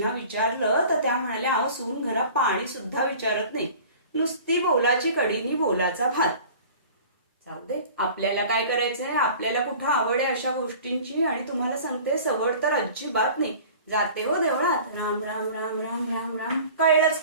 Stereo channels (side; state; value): both; inverted; correlation -0.44